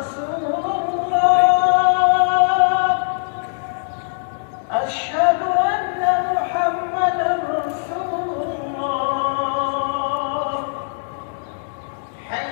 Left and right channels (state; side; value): silent; right; digital silence